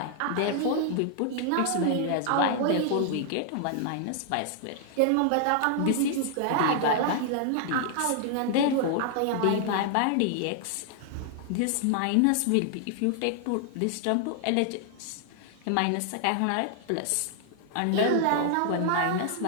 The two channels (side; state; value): both; different; correlation 0.00